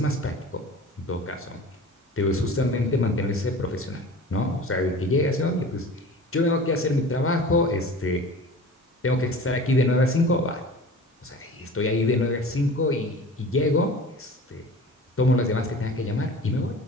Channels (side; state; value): both; normal; correlation 0.39